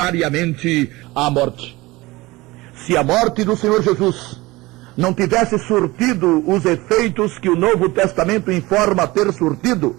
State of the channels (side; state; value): left; quieter; 20.8 dB